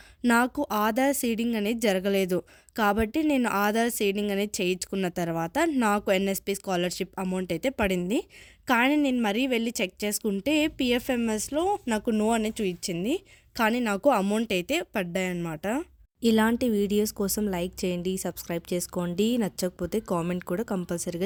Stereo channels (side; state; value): both; identical; correlation 1.00